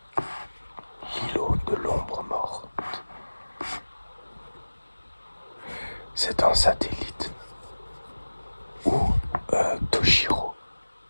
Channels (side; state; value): both; inverted; correlation -1.00